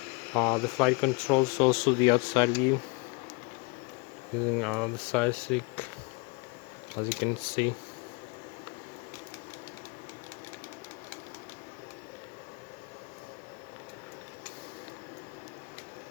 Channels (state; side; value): quieter; right; 29.7 dB